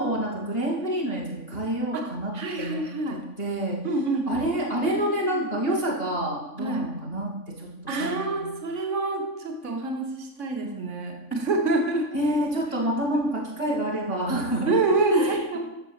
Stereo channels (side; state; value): right; late; 3.5 ms